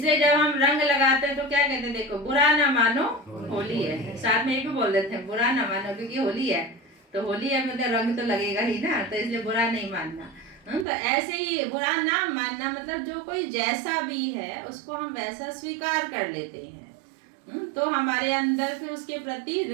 जब हम रंग लगाते हैं तो क्या कहते हैं, देखो बुरा ना मानो होली है, साथ में ये भी बोल देते हैं बुरा ना मानो क्योंकि होली है, तो होली है मतलब रंग तो लगेगा ही ना, तो इसलिए बुरा नहीं मानना। तो ऐसे ही बुरा ना मानना मतलब जो कोई जैसा भी है उसको हम वैसा स्वीकार कर लेते हैं। तो हमारे अंदर फिर उसके प्रति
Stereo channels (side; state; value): left; drops out; at 10.9 s